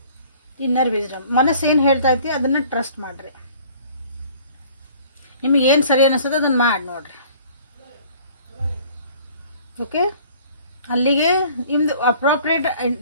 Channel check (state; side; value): inverted; both; correlation -0.52